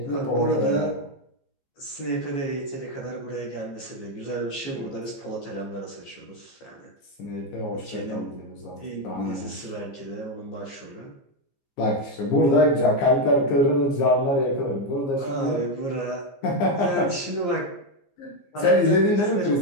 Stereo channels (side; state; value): right; late; 14 ms